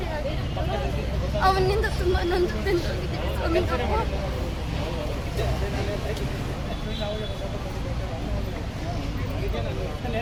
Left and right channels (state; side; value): identical; both; correlation 1.00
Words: ಆಗಿತ್ತು. ಅವನಿಂದ ತುಂಬ ನೊಂದು ಬೆಂದೋಗಿದ್ದೀವಿ ಸ್ವಾಮಿ.